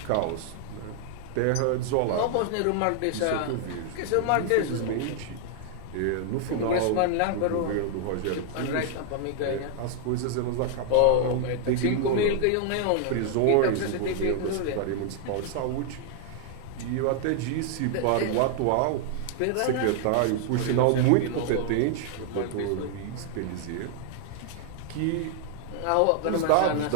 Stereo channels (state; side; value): different; both; correlation 0.00